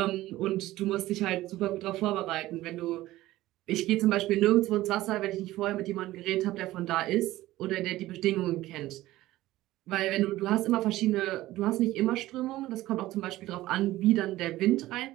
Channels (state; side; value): quieter; left; 16.4 dB